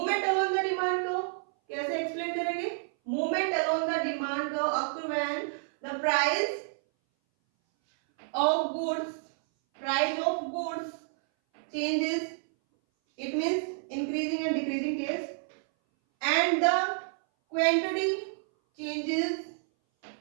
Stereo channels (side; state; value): left; silent; 58 dB below the other